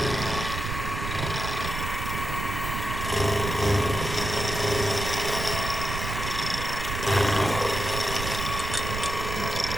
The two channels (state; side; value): noise; right; rumble, 5 dB below the sound